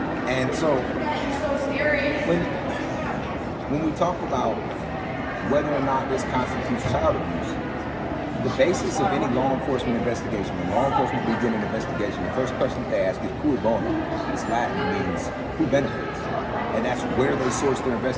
And so when we talk about whether or not this constitutes child abuse, the basis of any law enforcement investigation, when law enforcement begin an investigation, the first question they ask is cui bono. It's Latin, means who benefits. And that's where they source their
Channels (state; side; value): identical; both; correlation 1.00